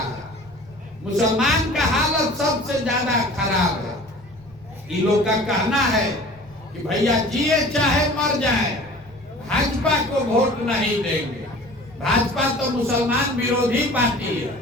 मुसलमान का हालत सबसे ज्यादा खराब है। इन लोग का कहना है कि भैया जिए चाहे मर जाए भाजपा को वोट नहीं देंगे, भाजपा तो मुसलमान विरोधी पार्टी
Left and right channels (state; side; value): noise; left; rumble, 25 dB below the sound